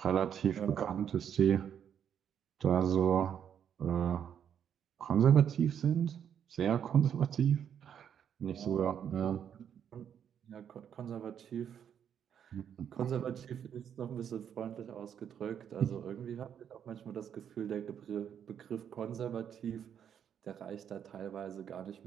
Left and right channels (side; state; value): left; quieter; 8.7 dB